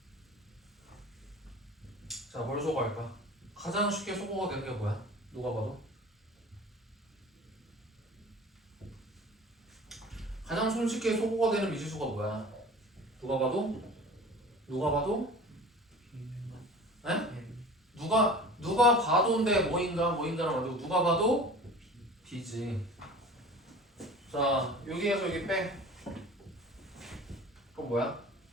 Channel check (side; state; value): both; normal; correlation 0.41